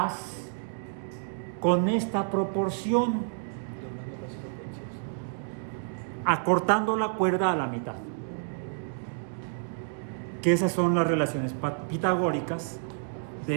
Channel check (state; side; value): silent; left; digital silence